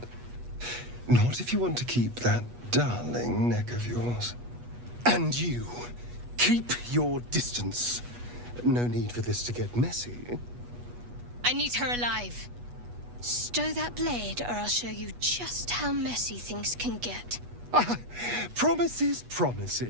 Not if you want to keep that darling neck of yours. And you, keep your distance. No need for this to get messy. I need her alive. Stow that blade, or I'll show you just how messy things can get. Promises,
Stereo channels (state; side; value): late; left; 8.3 ms